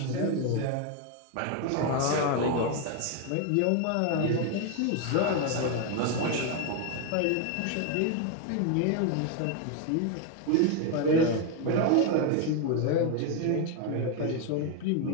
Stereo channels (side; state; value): both; different; correlation 0.01